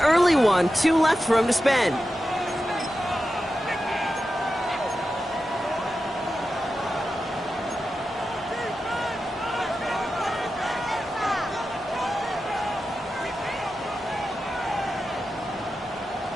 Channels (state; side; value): normal; both; correlation 0.91